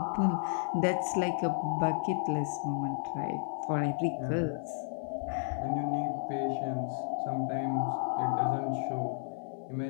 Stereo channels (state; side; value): silent; right; 56 dB below the other